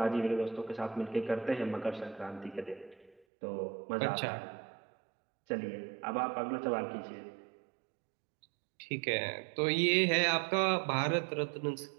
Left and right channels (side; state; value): left; drops out; at 3.2 s